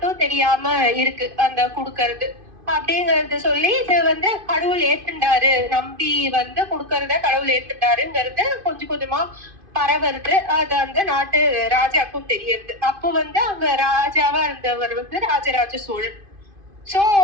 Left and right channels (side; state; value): left; late; 2.5 ms